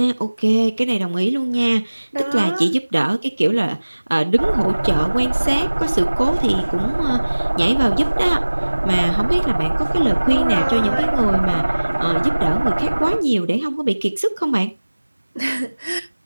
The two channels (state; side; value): inverted; both; correlation -1.00